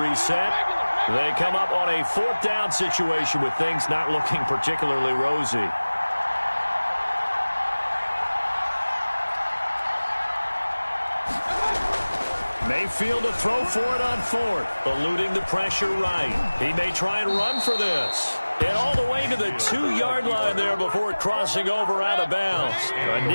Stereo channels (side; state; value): both; inverted; correlation -1.00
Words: They come up on a 4th down situation with things not looking particularly rosy. Mayfield to throw for it on 4th. Eluding the pressure right. He may try and run for this. And all the way to the 2-yard line there before crossing over out of bounds. A